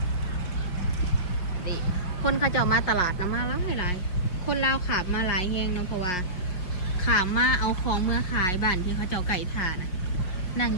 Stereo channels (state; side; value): late; right; 5.6 ms